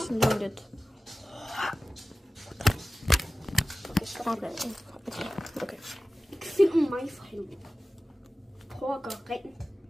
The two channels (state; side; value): normal; both; correlation 0.95